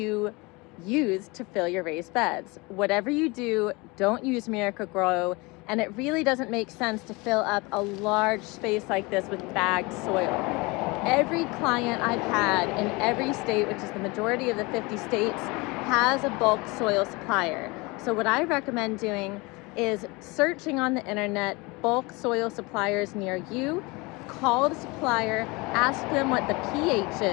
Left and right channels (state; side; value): quieter; right; 25.5 dB